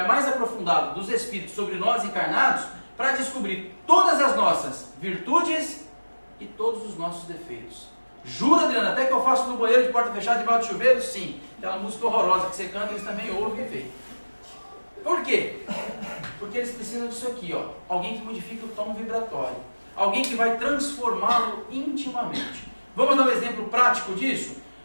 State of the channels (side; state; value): both; inverted; correlation -1.00